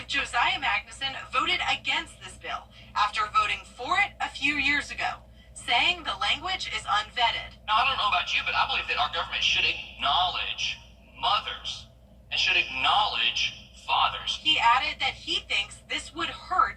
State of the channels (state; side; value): identical; both; correlation 1.00